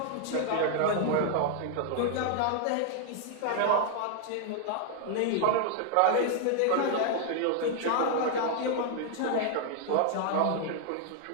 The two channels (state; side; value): different; both; correlation 0.00